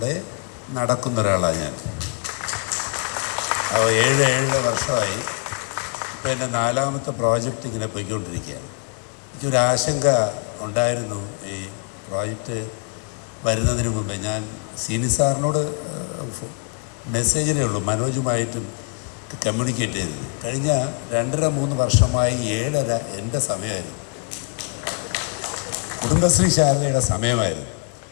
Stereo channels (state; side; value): quieter; right; 36.3 dB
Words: നടക്കുന്ന ഒരാളാണ് ഞാൻ. 7 വർഷമായി. ഇപ്പോൾ എൻ്റെ 4ാമത്തെ പ്രോജക്റ്റ് ഇങ്ങനെ പോയിക്കൊണ്ടിരിക്കുകയാണ്. എനിക്കൊരു ആശങ്ക ഉണ്ടായിരുന്നു ഈ പ്രോജക്റ്റ് വരുന്നതിന് മുമ്പേ. ഞാൻ സീനി സാറിനോട് മെസ്സേജിലേ ഉള്ളൂ, മനോജുമായിട്ടും കമ്മ്യൂണിക്കേറ്റ് ചെയ്തത്. കഴിഞ്ഞ 2.5-3 വർഷമായി 7.5 എൻ്റെ സമയമായിരുന്നു, കുടുംബശ്രീ ശാലയുടെ സമയമായിരുന്നു.